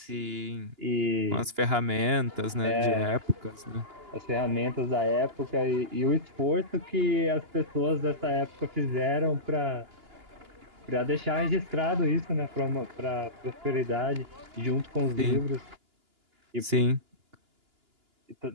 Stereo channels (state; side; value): late; left; 2.9 ms